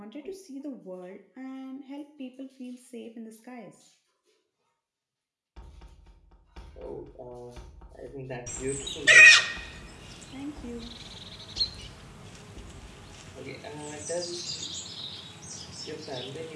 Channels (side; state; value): both; identical; correlation 1.00